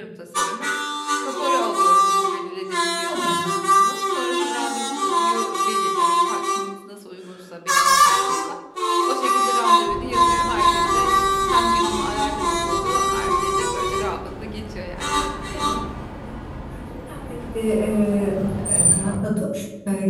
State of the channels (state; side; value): identical; both; correlation 1.00